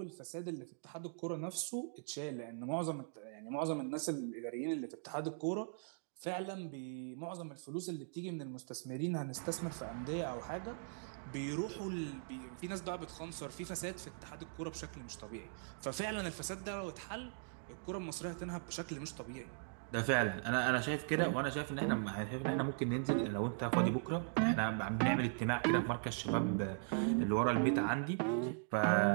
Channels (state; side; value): silent; left; digital silence